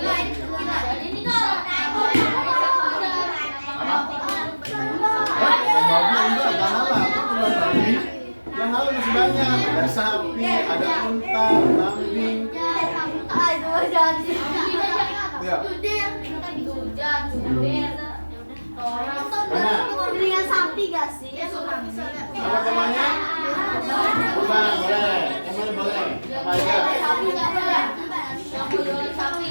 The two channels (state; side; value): inverted; both; correlation -1.00